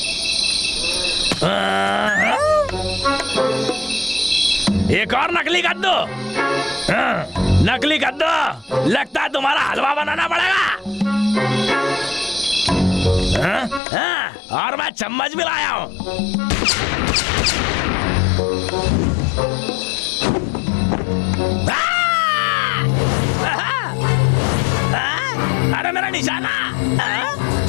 एक और नकली कद्दू। नकली कद्दू, लगता है तुम्हारा हलवा बनाना पड़ेगा। और मैं चम्मच भी लाया हूँ। अरे मेरा निशाना।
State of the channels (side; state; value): right; drops out; at 13.8 s